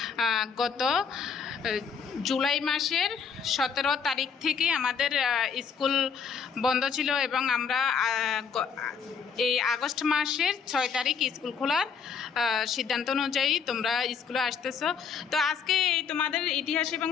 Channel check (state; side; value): quieter; right; 6.4 dB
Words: গত জুলাই মাসের 17 তারিখ থেকে আমাদের স্কুল বন্ধ ছিল এবং আমরা এই আগস্ট মাসের 6 তারিখ স্কুল খোলার সিদ্ধান্ত অনুযায়ী তোমরা স্কুলে আসতেছো। তো আজকে এই তোমাদের ইতিহাস এবং